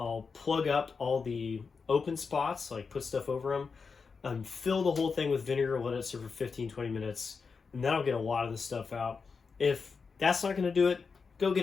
plug up all the open spots, like put stuff over them, and fill the whole thing with vinegar, let it sit for 15-20 minutes, and that'll get a lot of the stuff out. If that's not going to do it, go get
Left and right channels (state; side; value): quieter; right; 5.1 dB